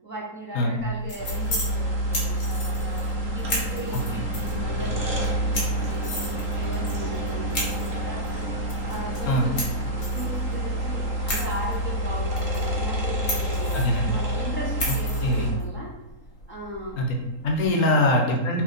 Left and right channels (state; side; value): late; right; 3.8 ms